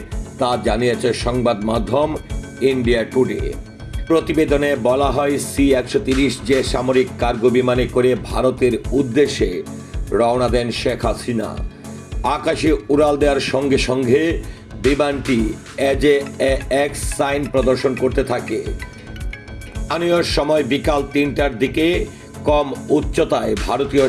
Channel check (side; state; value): both; identical; correlation 1.00